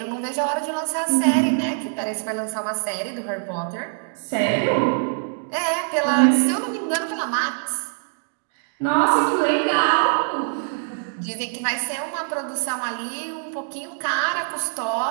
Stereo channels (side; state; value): left; silent; digital silence